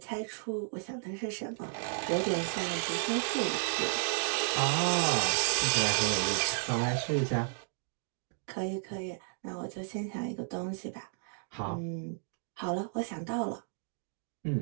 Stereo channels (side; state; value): left; silent; digital silence